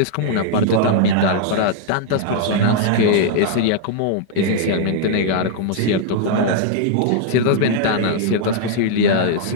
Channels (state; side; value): different; both; correlation -0.01